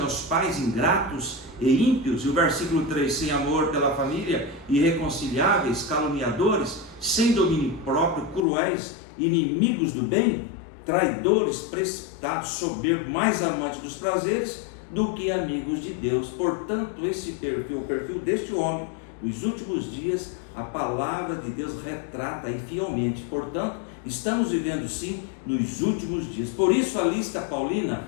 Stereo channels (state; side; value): drops out; right; at 8.5 s